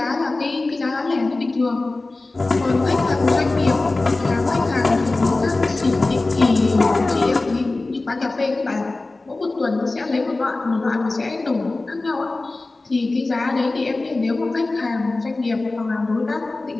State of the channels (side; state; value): right; quieter; 3.2 dB